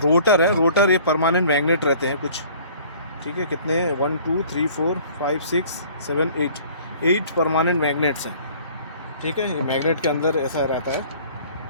है। रोटर ये परमानेंट मैग्नेट रहते हैं कुछ। ठीक है, कितने 1 2 3 4 5 6 7 8 परमानेंट मैग्नेट्स हैं। ठीक है, ये मैग्नेट के अंदर ऐसा रहता है।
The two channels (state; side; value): inverted; both; correlation -0.51